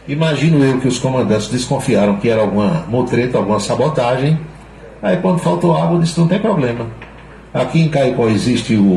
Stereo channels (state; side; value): identical; both; correlation 1.00